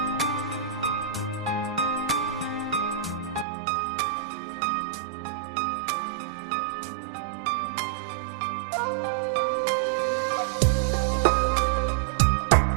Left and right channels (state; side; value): drops out; left; at 3.5 s